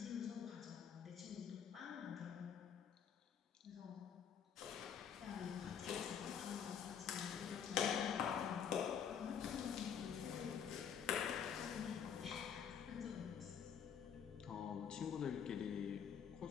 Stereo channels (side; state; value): right; quieter; 7.9 dB